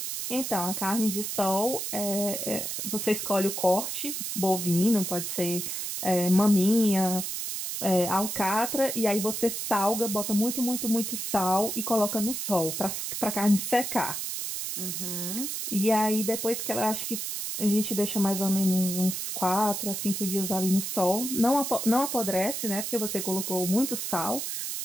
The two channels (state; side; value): noise; right; hiss, 4 dB below the sound